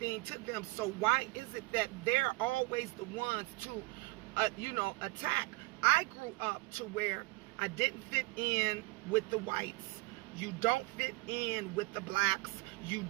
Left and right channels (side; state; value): left; quieter; 25.8 dB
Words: to them. So why is it that they're always the ones to, you know, attack? I grew up to where I didn't fit in with the whites. You don't fit in with the blacks. You